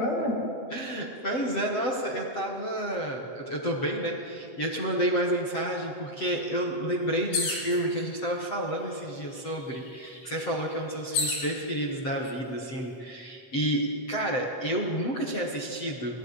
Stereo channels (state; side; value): late; right; 7.8 ms